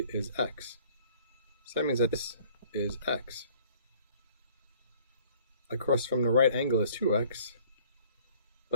is x. So that means that this is x. Across from the right angle is 2x,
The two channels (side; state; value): both; inverted; correlation -0.54